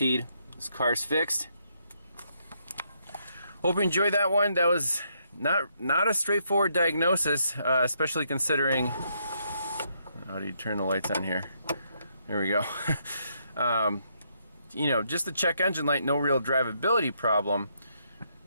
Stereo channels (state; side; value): inverted; both; correlation -0.75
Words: this car's fixed. Hope you enjoyed that one. That was not a straightforward diagnosis, especially considering. How do you turn the lights on here? There we go. You know, just the check engine light, no real drivability problem,